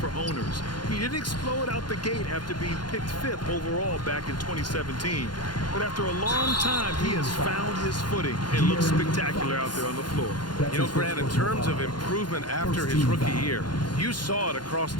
owners. He didn't explode out the gate after being picked 5th overall back in 2017. But after a long time, he has found his footing and looks spectacular out there on the floor. You know, Grant, in terms of improvement after his rookie year, you saw it across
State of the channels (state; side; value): late; right; 0.71 ms